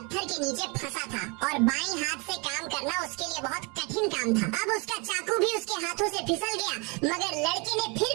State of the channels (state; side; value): quieter; left; 30.8 dB